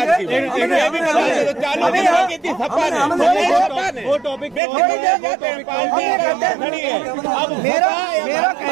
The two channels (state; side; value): drops out; left; at 4.6 s